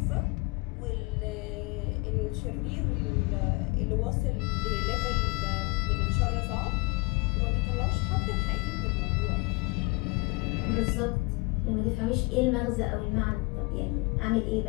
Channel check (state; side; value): quieter; right; 26.4 dB